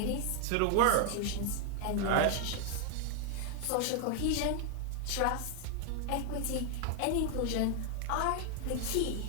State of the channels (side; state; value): both; different; correlation 0.00